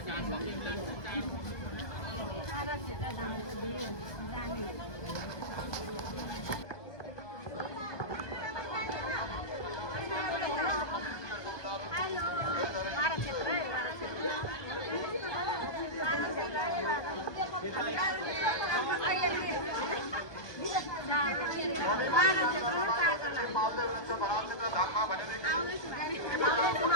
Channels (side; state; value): right; late; 1.2 ms